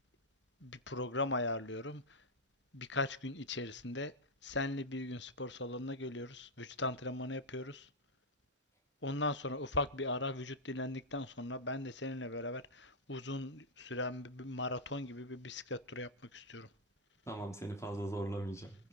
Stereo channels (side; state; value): both; normal; correlation -0.03